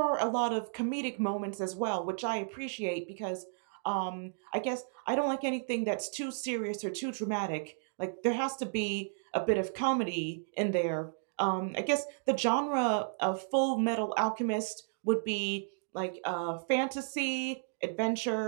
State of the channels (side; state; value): left; silent; digital silence